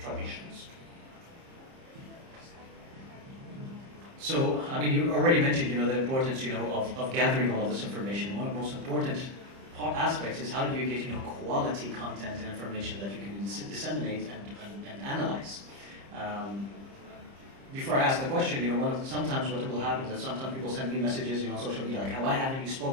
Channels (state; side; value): late; left; 30 ms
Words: So, I mean, you already mentioned, the importance, of gathering all of this information. One of the most important aspects is how do you get, quality content and information that you can disseminate and analyze. Before I ask the question, sometimes what will happen is that sometimes people send me messages, on social media, like, why haven't you